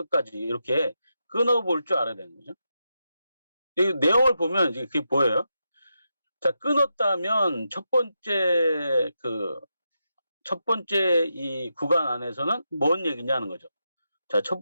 이렇게 끊어볼 줄 알아야 되는 거죠. 이 내용을 보면 이제 그게 보여요. 자, 끊었다면 첫 번째 이 구간 안에서는 뭔 얘기냐는 거죠. 자, 첫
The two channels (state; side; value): inverted; both; correlation -0.86